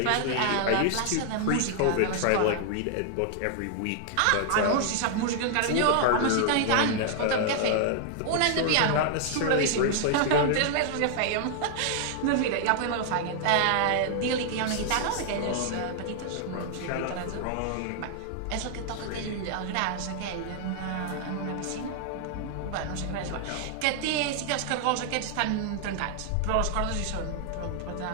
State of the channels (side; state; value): both; different; correlation 0.00